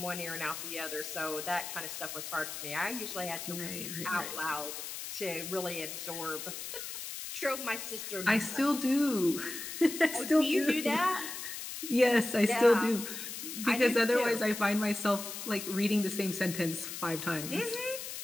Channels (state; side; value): noise; left; hiss, 7 dB below the sound